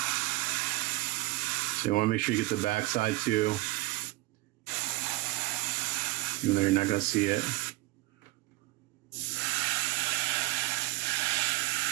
So you want to make sure you get the back side too. Even though you're not going to see it.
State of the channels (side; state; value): left; quieter; 20.0 dB